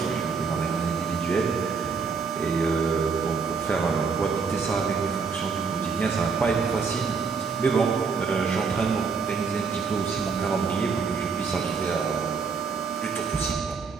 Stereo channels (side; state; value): left; quieter; 5.2 dB